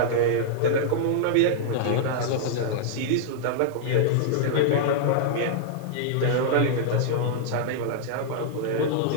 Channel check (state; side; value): different; both; correlation -0.01